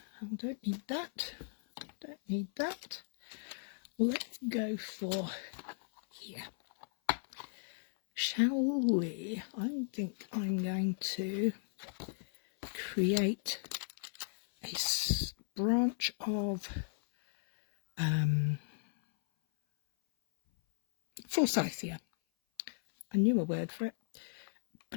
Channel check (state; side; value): silent; right; 54 dB below the other